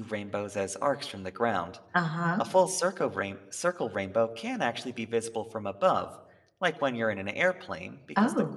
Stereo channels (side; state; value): both; identical; correlation 1.00